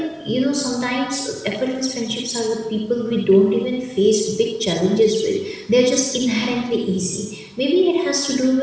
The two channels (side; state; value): both; identical; correlation 1.00